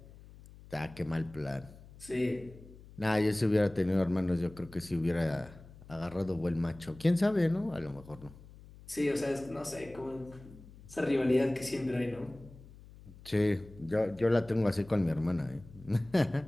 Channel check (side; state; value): left; noise; hum, 20 dB below the sound